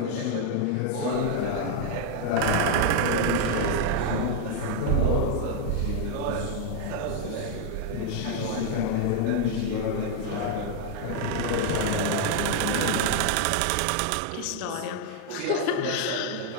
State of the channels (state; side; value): different; both; correlation 0.00